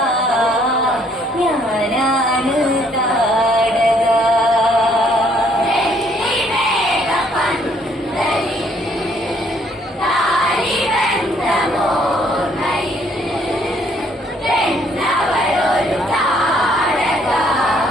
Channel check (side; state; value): both; normal; correlation 0.65